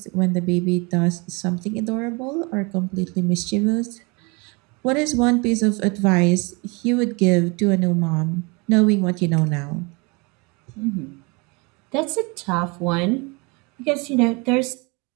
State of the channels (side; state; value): left; quieter; 28.9 dB